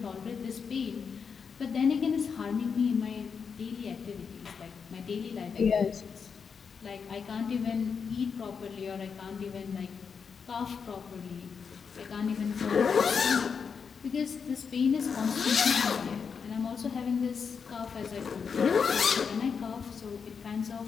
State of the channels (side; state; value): right; quieter; 6.1 dB